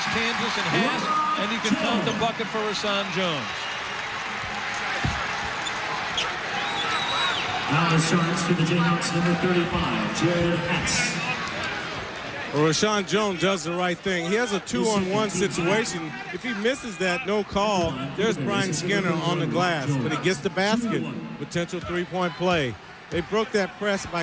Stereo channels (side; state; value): both; identical; correlation 1.00